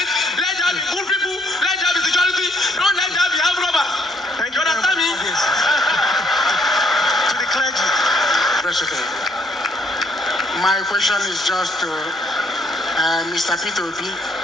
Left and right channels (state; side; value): normal; both; correlation 0.68